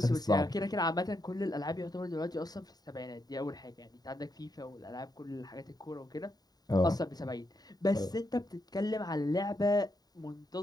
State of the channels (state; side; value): late; right; 0.19 ms